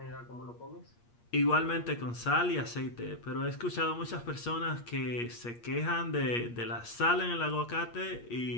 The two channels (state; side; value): late; right; 8.5 ms